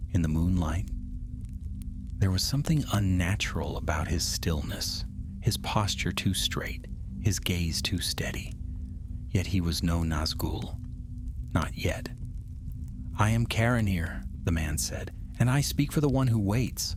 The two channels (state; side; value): identical; both; correlation 1.00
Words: in the moonlight. There was something unnatural about his stillness, his posture too straight, his gaze too steady. Yet he was no Nazgûl. Not yet. "I am Caranir," the man said, "and I speak for the one who waits."